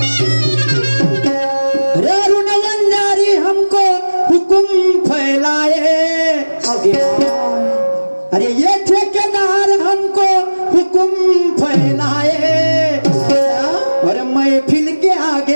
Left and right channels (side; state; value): both; inverted; correlation -1.00